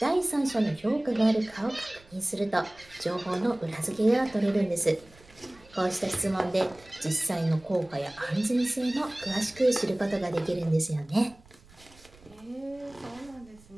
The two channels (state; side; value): noise; right; rumble, 26 dB below the sound